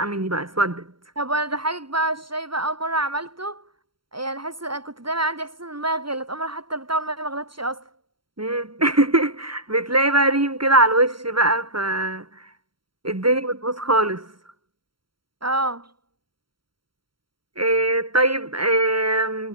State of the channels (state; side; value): late; left; 0.73 ms